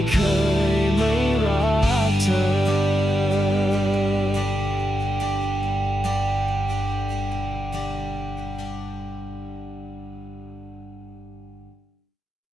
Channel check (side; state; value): both; normal; correlation 0.86